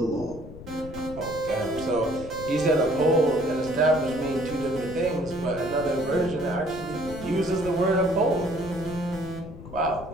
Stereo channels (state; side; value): noise; left; rumble, 14 dB below the sound